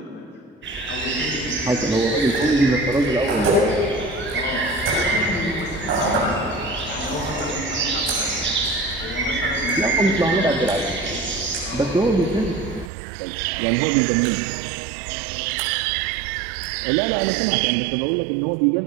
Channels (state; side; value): drops out; left; at 12.9 s